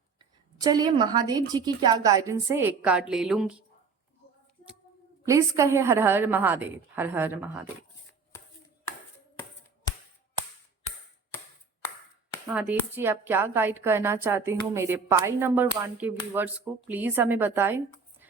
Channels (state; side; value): quieter; left; 5.0 dB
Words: चलिए महादेव जी की क्या गाइडेंस है, एक कार्ड ले लूंगी। प्लीज कहे हर हर महादेव, हर हर महादेव। महादेव जी आप क्या गाइड करना चाहते हो मेरे पाइल नंबर 1 के व्यूवर्स को, प्लीज हमें बताएं।